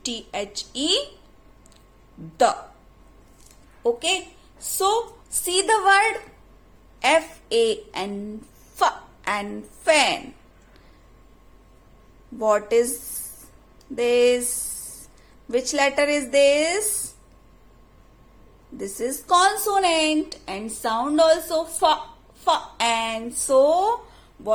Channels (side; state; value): both; identical; correlation 1.00